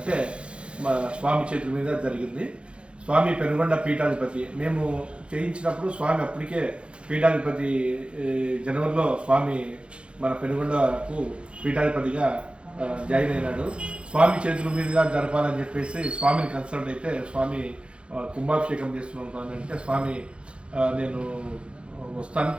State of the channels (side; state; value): left; late; 0.058 ms